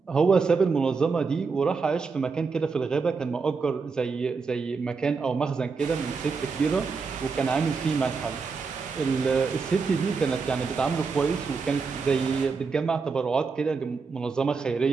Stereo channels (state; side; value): quieter; left; 4.9 dB